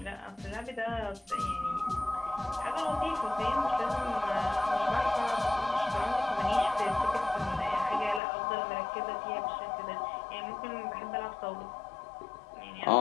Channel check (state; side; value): drops out; right; at 8.2 s